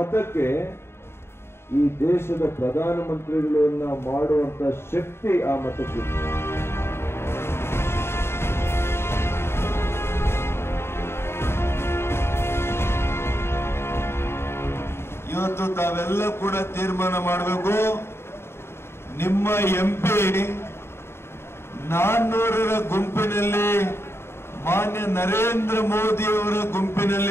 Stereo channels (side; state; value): right; late; 0.12 ms